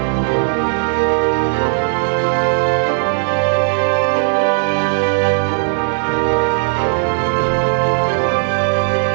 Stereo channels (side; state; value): left; silent; 69 dB below the other